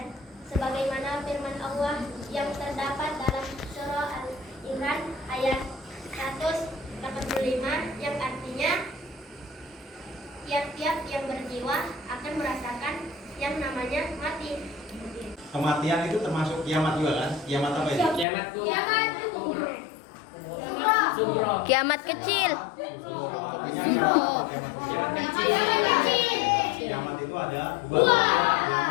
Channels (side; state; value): right; drops out; at 18.2 s